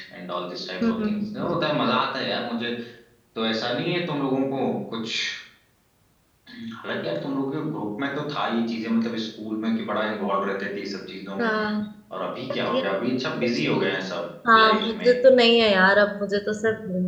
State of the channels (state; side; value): identical; both; correlation 1.00